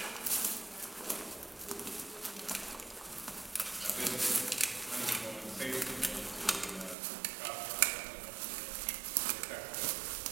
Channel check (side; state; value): left; drops out; at 7.0 s